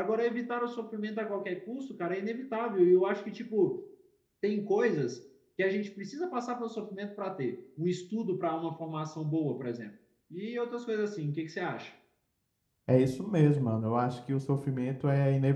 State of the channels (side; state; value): both; identical; correlation 1.00